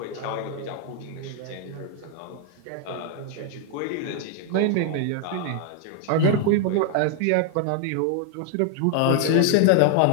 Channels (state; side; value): different; both; correlation 0.00